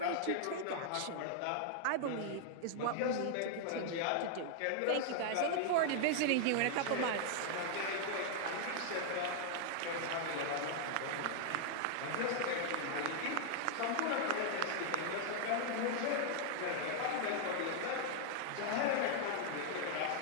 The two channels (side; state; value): both; different; correlation 0.00